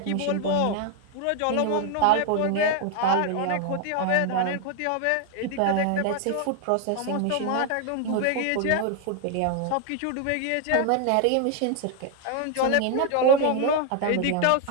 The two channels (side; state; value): both; different; correlation 0.00